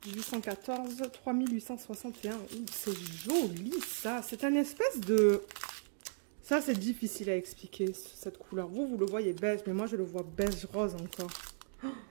814, 3861. C'est joli, ça. C'est un espèce de... Ça, c'est difficile à expliquer, cette couleur. Vous le voyez beige, mais moi, je le vois beige rose encore. Oh,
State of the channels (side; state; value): left; silent; digital silence